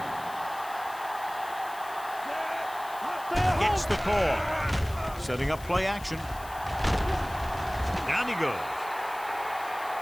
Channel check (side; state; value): left; noise; hiss, 18 dB below the sound